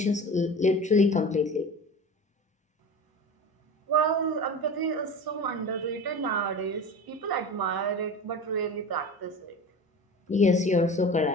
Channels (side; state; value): both; normal; correlation 0.33